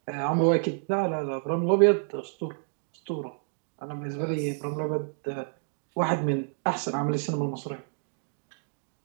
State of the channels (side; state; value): left; silent; 59 dB below the other